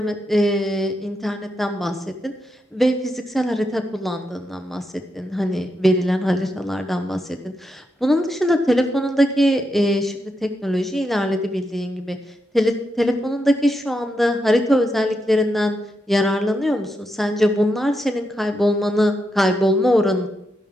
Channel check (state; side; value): normal; both; correlation 0.84